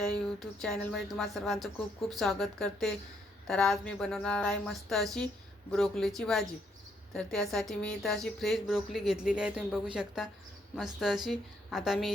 यूट्यूब चॅनलमध्ये तुम्हा सर्वांचं खूप खूप स्वागत करते। तर आज मी बनवणार आहे मस्त अशी ब्रोकलीची भाजी। तर त्यासाठी मी इथं अशी फ्रेश ब्रोकली घेतलेली आहे, तुम्ही बघू शकता मस्त अशी। आता मी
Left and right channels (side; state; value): both; normal; correlation 0.72